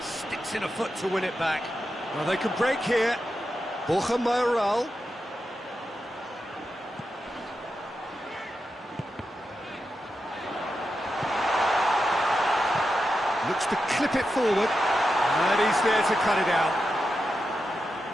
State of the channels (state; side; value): normal; both; correlation 0.89